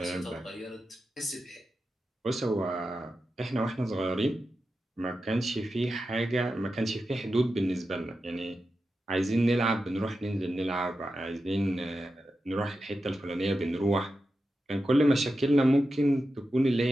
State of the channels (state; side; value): normal; both; correlation 0.91